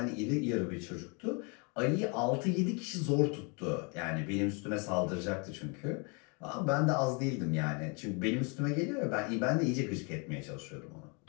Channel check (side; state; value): right; quieter; 33.4 dB